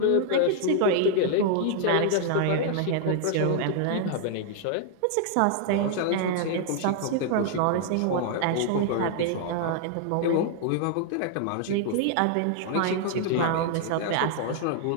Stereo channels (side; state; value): both; different; correlation 0.00